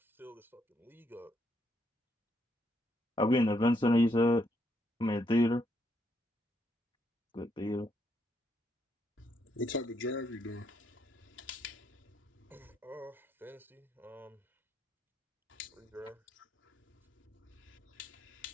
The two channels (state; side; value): normal; both; correlation 0.76